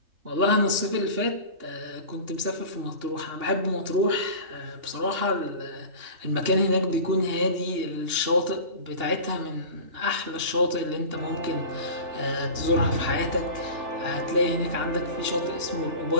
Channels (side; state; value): left; late; 2.9 ms